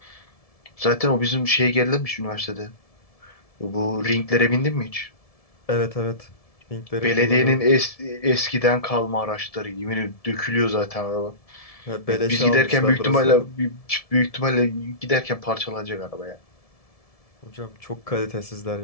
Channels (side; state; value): right; late; 1.7 ms